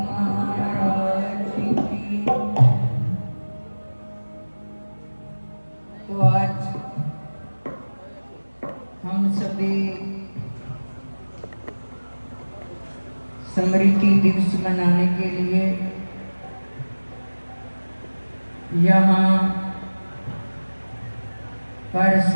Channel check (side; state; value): both; inverted; correlation -1.00